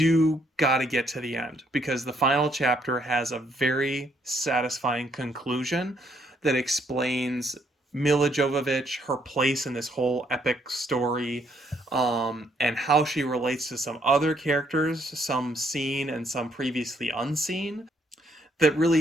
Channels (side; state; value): both; normal; correlation 0.70